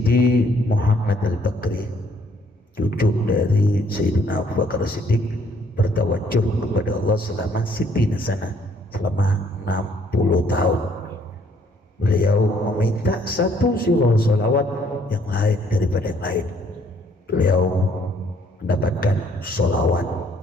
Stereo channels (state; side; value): normal; both; correlation 0.64